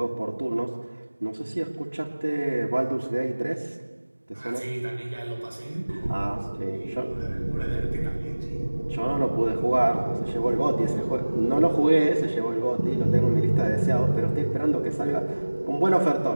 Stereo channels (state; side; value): inverted; both; correlation -1.00